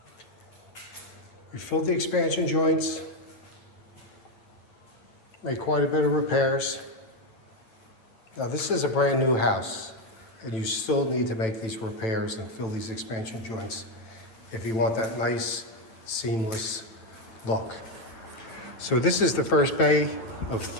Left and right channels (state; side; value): late; right; 9.0 ms